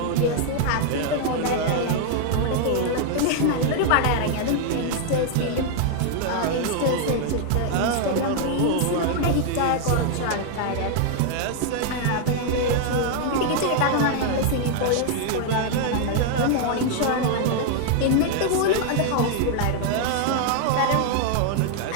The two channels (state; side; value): different; both; correlation 0.00